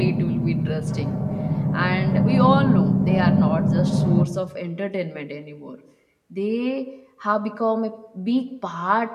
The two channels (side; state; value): both; identical; correlation 1.00